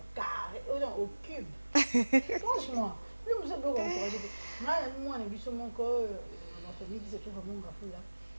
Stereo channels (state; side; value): inverted; both; correlation -1.00